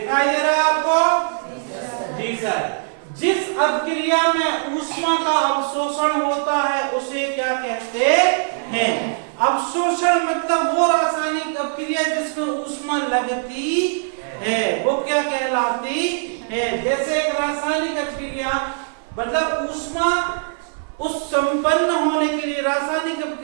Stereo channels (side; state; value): left; silent; 55 dB below the other